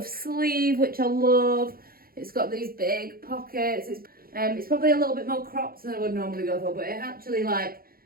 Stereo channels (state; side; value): late; left; 0.43 ms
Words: sleeve, which I love. It's got these big pockets. It's probably a little bit more cropped than I would normally go for, but it actually like